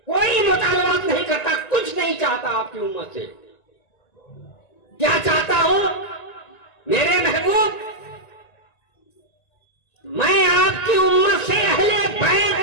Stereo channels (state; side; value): late; right; 1.9 ms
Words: कोई मुतालबात नहीं करता, कुछ नहीं चाहता आपकी उम्मत से। क्या चाहता हूं मेरे महबूब, मैं आपकी उम्मत से अहले